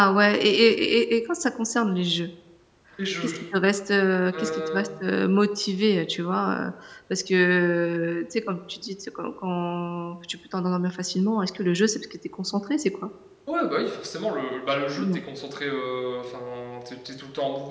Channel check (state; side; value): identical; both; correlation 1.00